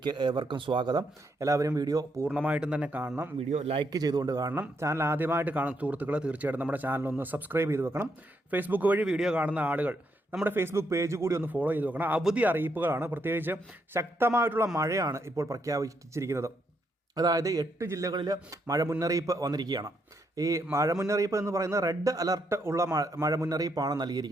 ഏവർക്കും സ്വാഗതം. എല്ലാവരും വീഡിയോ പൂർണ്ണമായിട്ടും തന്നെ കാണണം. വീഡിയോ ലൈക്ക് ചെയ്തുകൊണ്ട് കാണണം. ചാനൽ ആദ്യമായിട്ട് കാണുന്ന സുഹൃത്തുക്കളെ തീർച്ചയായിട്ടും നമ്മുടെ ചാനൽ ഒന്ന് സബ്സ്ക്രൈബ് ചെയ്ത് വെക്കണം. ഫേസ്ബുക്ക് വഴി വീഡിയോ കാണുന്ന ആളുകൾ നമ്മുടെ ഫേസ്ബുക്ക് പേജ് കൂടി ഒന്ന് ഫോളോ ചെയ്ത് വെക്കണം. അവധി അറിയിപ്പുകളാണ്, പ്രത്യേകിച്ച് ശക്തമായിട്ടുള്ള മഴയാണ് ഇപ്പോൾ പ്രഖ്യാപിച്ചിരിക്കുന്നത്. അതായത് 8 ജില്ലകളിൽ മഴ മുന്നറിയിപ്പ് വന്നിരിക്കുകയാണ്. ഈ മഴ മുന്നറിയിപ്പ് എന്ന് പറയുന്നത് റെഡ് അലർട്ട് ഉള്ള മഴ മുന്നറിയിപ്പാണ്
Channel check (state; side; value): normal; both; correlation 0.77